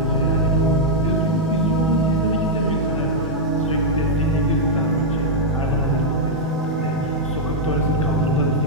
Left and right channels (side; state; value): both; normal; correlation -0.03